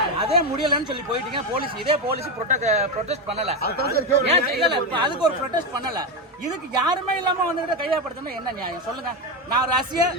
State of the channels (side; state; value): both; normal; correlation 0.11